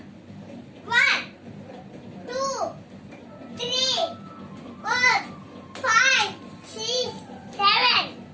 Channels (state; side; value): identical; both; correlation 1.00